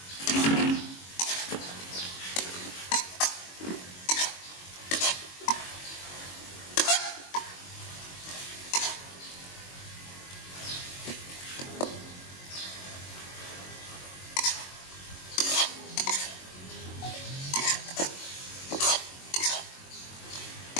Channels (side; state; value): right; late; 22 ms